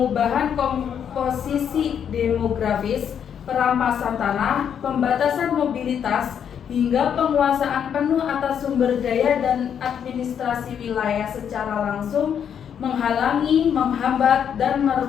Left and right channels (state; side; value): quieter; right; 8.3 dB